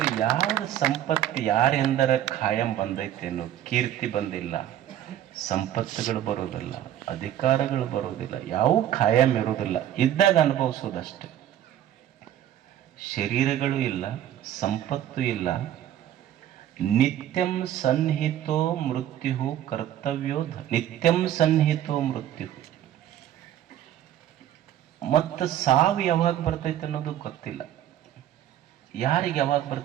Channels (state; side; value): quieter; left; 11.6 dB